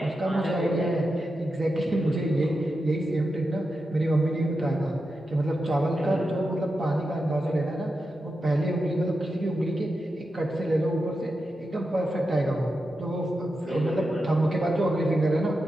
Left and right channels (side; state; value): both; normal; correlation 0.89